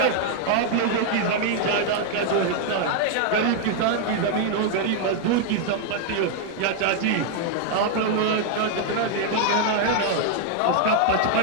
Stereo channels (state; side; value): different; both; correlation 0.00